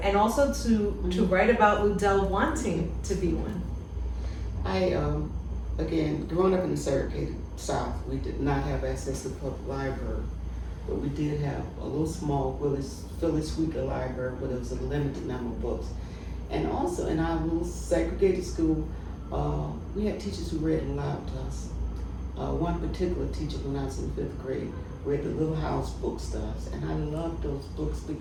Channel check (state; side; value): identical; both; correlation 1.00